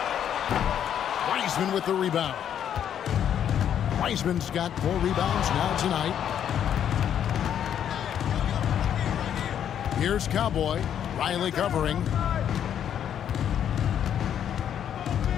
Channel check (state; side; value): quieter; right; 9.4 dB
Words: Wiseman with the rebound. Wiseman's got 4 rebounds now tonight. Here's Cowboy. Riley covering.